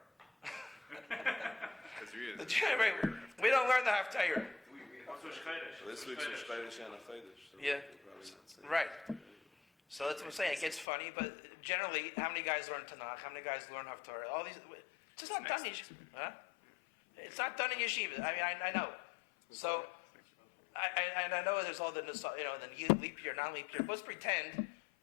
We don't learn the Haftorah. Yeah. Right. So that's what I'm saying. It gets funny, but generally, how many guys learn Tanakh? How many guys learn Haftorah? All these. It's just not done in yeshiva. Huh? It's not done in yeshiva. I mean, I know. So. I know there's all the leap year, non-leap year. Let's pretend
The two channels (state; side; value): drops out; right; at 10.9 s